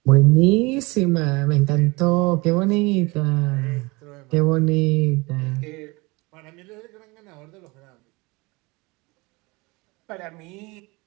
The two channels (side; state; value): left; quieter; 25.0 dB